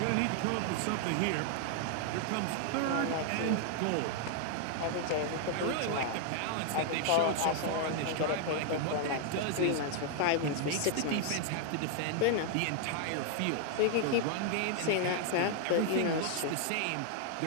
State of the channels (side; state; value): both; different; correlation 0.00